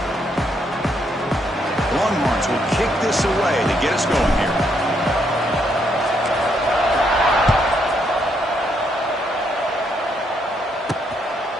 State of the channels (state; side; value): normal; both; correlation 0.75